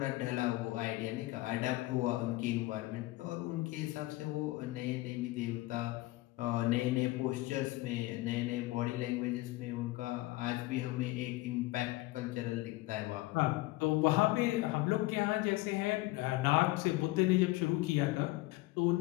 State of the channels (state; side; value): quieter; right; 19.5 dB